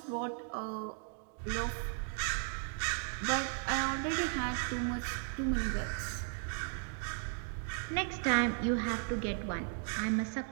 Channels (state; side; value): silent; left; 54 dB below the other